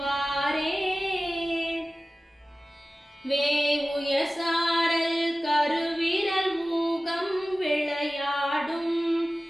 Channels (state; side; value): normal; both; correlation 0.96